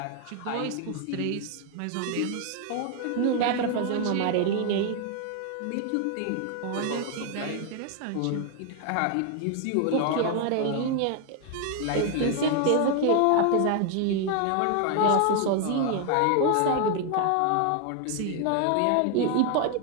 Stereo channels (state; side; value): different; both; correlation 0.00